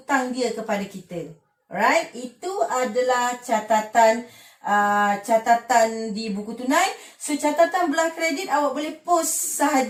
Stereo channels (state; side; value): identical; both; correlation 1.00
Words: dia kepada kita. Alright, itu adalah catatan di buku tunai. So catatan belah kredit awak boleh post